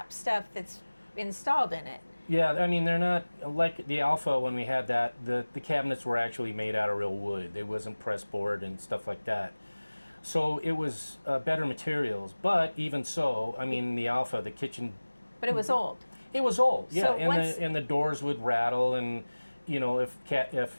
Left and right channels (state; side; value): inverted; both; correlation -1.00